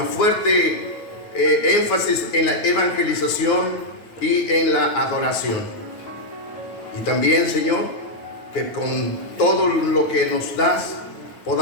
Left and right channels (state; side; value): late; right; 9.6 ms